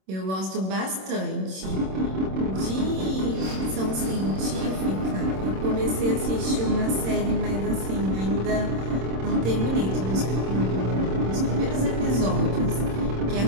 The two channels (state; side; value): late; left; 26 ms